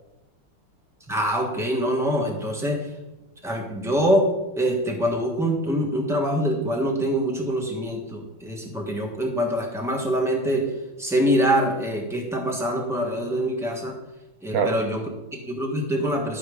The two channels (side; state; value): both; normal; correlation 0.42